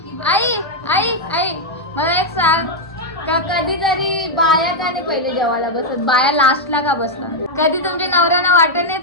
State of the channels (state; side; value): normal; both; correlation -0.02